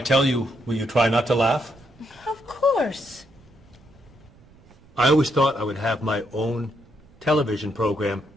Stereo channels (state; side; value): noise; right; rumble, 27 dB below the sound